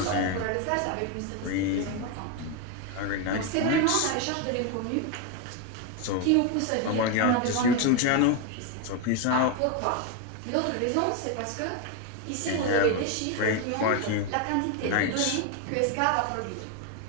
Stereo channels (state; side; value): different; both; correlation 0.02